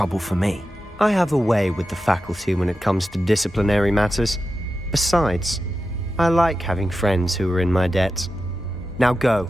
for me. I have a way with the faculty when it comes to disciplinary matters. Besides, I like having friends who are in my debt. Now go.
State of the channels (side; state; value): both; normal; correlation 0.91